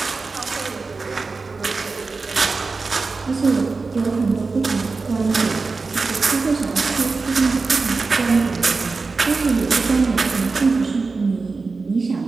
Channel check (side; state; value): left; quieter; 4.1 dB